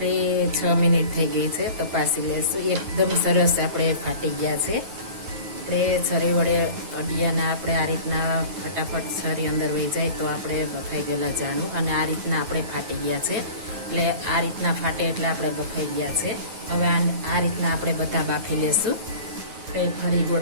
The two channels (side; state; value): left; late; 9.3 ms